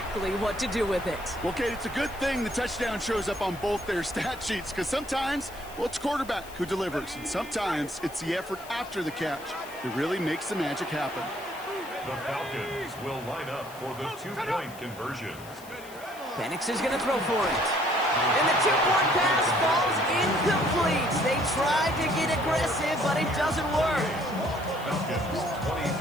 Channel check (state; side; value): noise; left; hiss, 19 dB below the sound